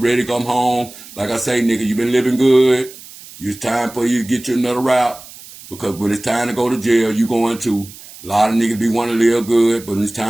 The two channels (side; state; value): right; noise; hiss, 18 dB below the sound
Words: ready to come home. Like I say, nigga, you been living good. It's time for you to get you another route. Because when it's time to go to jail, you going to. A lot of niggas be want to live good, but when it's